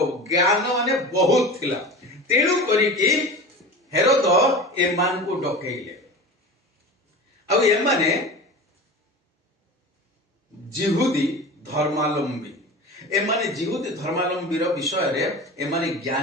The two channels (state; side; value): normal; both; correlation 0.32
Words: ज्ञान माने बहुत थिला तेणु करी कि हेरोद ए मान को डकेइले अब ए माने जिहुदी धर्मावलंबी एमाने जिहुदी धर्मावलंबी विषय रे एमाने